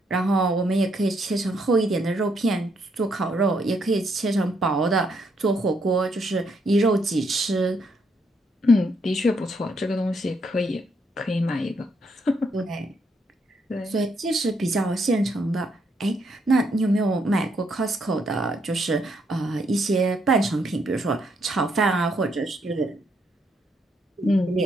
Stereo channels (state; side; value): normal; both; correlation 0.75